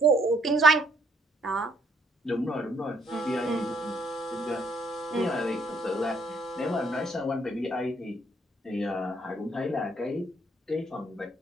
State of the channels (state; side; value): normal; both; correlation 0.68